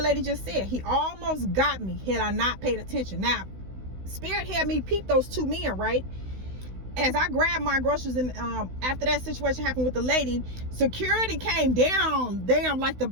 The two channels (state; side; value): late; left; 16 ms